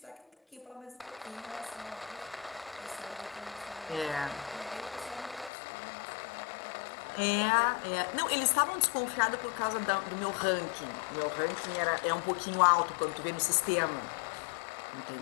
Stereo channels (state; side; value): drops out; right; at 5.5 s